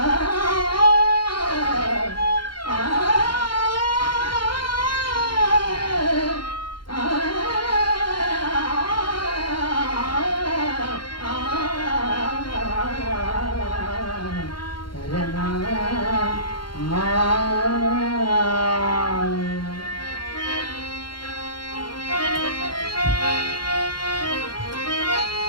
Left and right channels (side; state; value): right; late; 0.72 ms